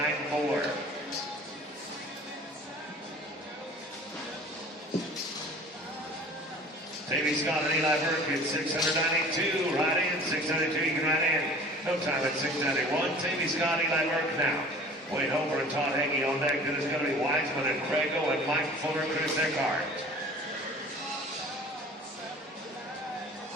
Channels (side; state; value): both; normal; correlation 0.45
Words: Davey Scott and Eli Burke at 692, right in, 692, you can right in. No time at 691. Davey Scott, Eli Burke now. Wayne Hofer and Todd Hagee on deck. Then it's going to be Wiseman and Crago and Mike Fuller, Chris Eckhart.